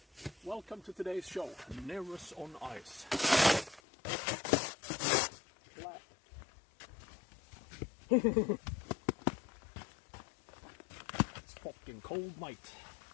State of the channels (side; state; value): right; drops out; at 3.8 s